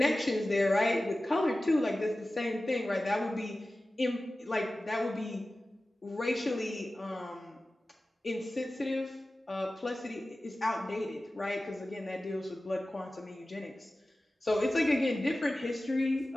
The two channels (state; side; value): normal; both; correlation 0.96